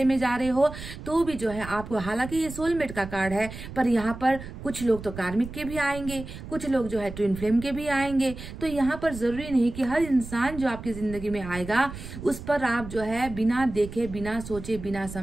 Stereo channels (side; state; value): right; noise; rumble, 11 dB below the sound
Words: में जा रहे हो, तो भी जो है आपको, हालांकि ये सोलमेट का कार्ड है, पर यहाँ पर कुछ लोग तो कार्मिक के भी आएंगे, कुछ लोग जो है ट्विन फ्लेम के भी आएंगे। तो यहाँ पर जरूरी नहीं कि हर इंसान जो आपकी जिंदगी में आएगा उस पर आप जो है बिना देखे, बिना सोचे, बिना